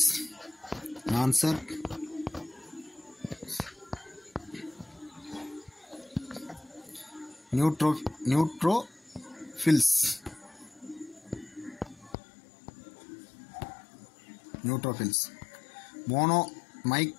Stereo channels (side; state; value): right; drops out; at 12.2 s